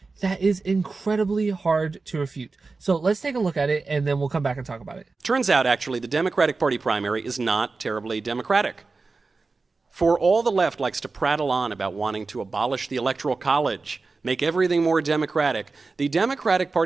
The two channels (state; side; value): quieter; left; 4.0 dB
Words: that is incredibly hard to refute. So let's take a look at it, and then we'll come back and talk about it. Turns out, actually, the Democratic Party primary is not terribly democratic. For all the left likes to prattle on about wanting to abolish the Electoral College, make everything more democratic, the Democratic